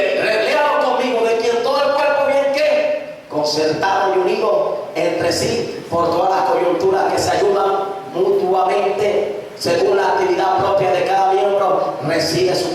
léalo conmigo, de quien todo el cuerpo bien ¿qué? Concertado y unido entre sí por todas las coyunturas, que se ayudan mutuamente según la actividad propia de cada miembro, recibe su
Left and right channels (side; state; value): both; identical; correlation 1.00